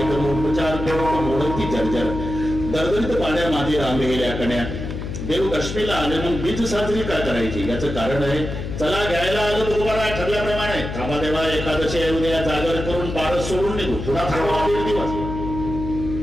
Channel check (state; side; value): noise; left; hum, 6 dB below the sound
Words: करून उपचार करून मोडती जर्जर दरदरीत पाण्या मागे रांगेल्या कण्या. देव दशमीला आले मग बीज साजरी काय करायची याचं कारण आहे. चला घ्यायला आलं तुकोबाराय ठरल्याप्रमाणे. थांबा देवा एकादशी उद्या जागर करून पारस सोडून निघू. थोडा थांबा 1.5 दिवस.